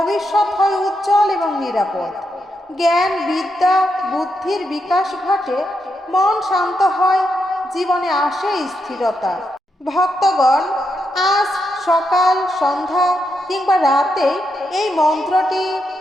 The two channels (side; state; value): both; normal; correlation 0.83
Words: হয় উজ্জ্বল এবং নিরাপদ, জ্ঞান, বিদ্যা, বুদ্ধির বিকাশ ঘটে, মন শান্ত হয়, জীবনে আসে স্থিরতা। ভক্তগণ, আজ সকাল, সন্ধ্যা কিংবা রাতে এই মন্ত্রটি